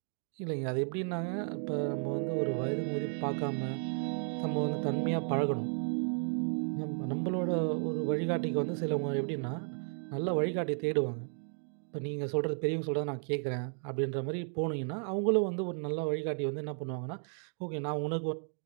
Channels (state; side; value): silent; left; 55 dB below the other